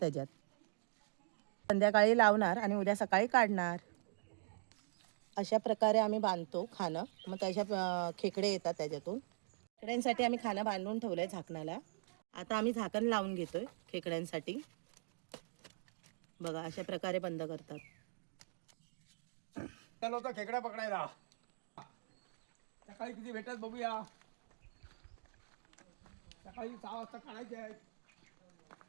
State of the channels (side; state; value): left; silent; digital silence